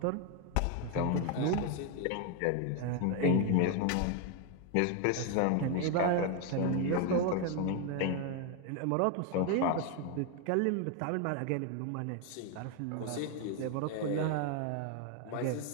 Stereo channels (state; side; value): different; both; correlation 0.01